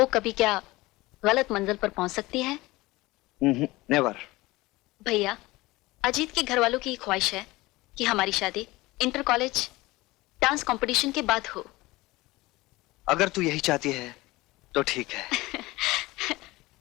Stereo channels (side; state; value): right; quieter; 20.3 dB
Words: कभी क्या गलत मंजिल पर पहुंच सकती है? नेवर। भैया, अजीत के घर वालों की ख्वाहिश है कि हमारी शादी इंटर कॉलेज डांस कंपटीशन के बाद हो। अगर तू यही चाहती है तो ठीक है।